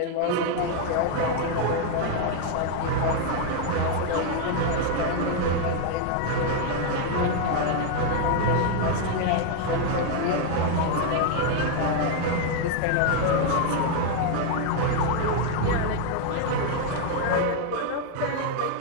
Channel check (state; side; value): different; both; correlation 0.00